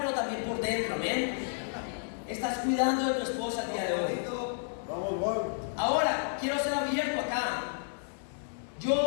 pero también por dentro, ¿amén? Estás cuidando de tu esposa el día de hoy. Ahora, quiero ser abierto acá.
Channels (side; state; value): right; silent; digital silence